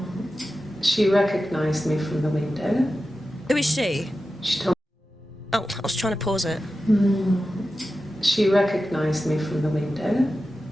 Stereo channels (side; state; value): both; normal; correlation 0.93